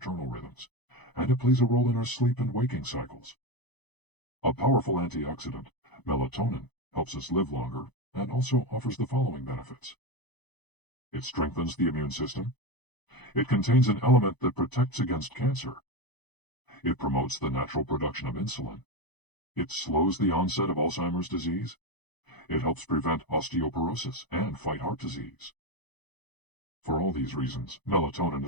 rhythms, and it plays a role in our sleep and waking cycles. A powerful antioxidant, melatonin, helps us live longer and also offers the following benefits. It strengthens the immune system. It contains an element that protects against cancer. It promotes the natural production of insulin. It slows the onset of Alzheimer's disease. It helps prevent osteoporosis and fight heart disease. For all these reasons, melatonin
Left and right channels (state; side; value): late; right; 0.99 ms